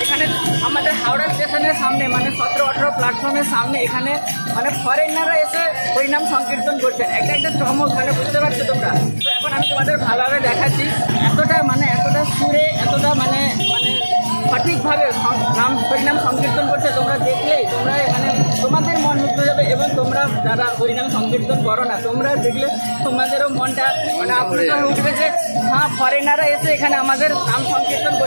এখানে আমাদের হাওড়া স্টেশনের সামনে মানে 17-18 প্ল্যাটফর্মের সামনে এখানে মানে ফরেনাররা এসে হরিনাম সংকীর্তন করছেন। একটা চমক, মানে বুঝতে পারছো তোমরা। তো এখন আমি তোমাদের ভালোভাবে দেখাচ্ছি, এতটা সুরে এতটা মানে সঠিকভাবে নাম হরিনাম সংকীর্তন করছে। তোমরা দেখলেই তোমরা মানে তোমাদের মন মুগ্ধ যাবে, এবং তোমরা যারা হরিনাম সংকীর্তন করো না, তোমরা দেখলে তোমাদেরও মনটা মানে আপ্লুত হয়ে উঠবে যে হ্যাঁ, ফরেনাররা এসে এখানে আমাদের নাম সংকীর্তন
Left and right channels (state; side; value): inverted; both; correlation -1.00